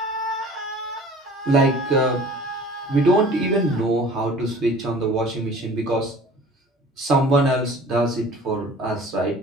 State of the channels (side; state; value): both; normal; correlation 0.46